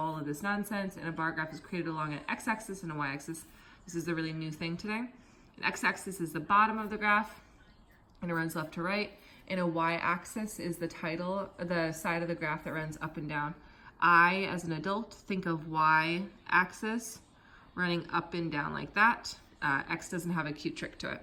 of this nonsense, and a bar graph is created along an x-axis and a y-axis. This is the really new thing today. An x-axis is the bottom of the graph, and it runs left to right. And a y-axis is the side of the graph that runs up and down. I, as an adult, think of y-axis running up and down like that. X doesn't have a cute trick to it.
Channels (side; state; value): both; identical; correlation 1.00